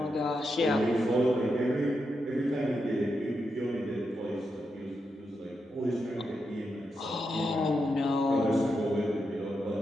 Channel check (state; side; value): normal; both; correlation 0.85